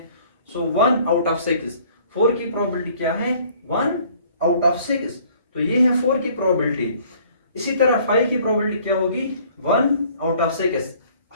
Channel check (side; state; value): both; inverted; correlation -0.56